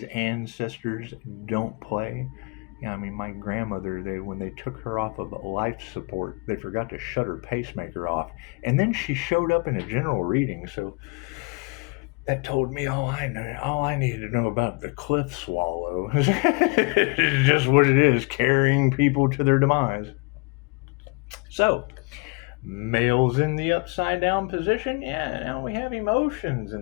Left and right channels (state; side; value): quieter; right; 29.9 dB